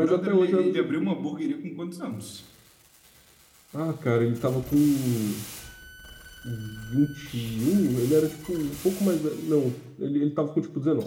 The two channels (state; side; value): identical; both; correlation 1.00